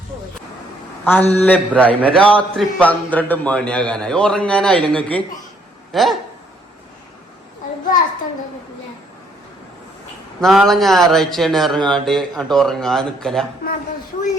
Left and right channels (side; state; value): both; normal; correlation 0.67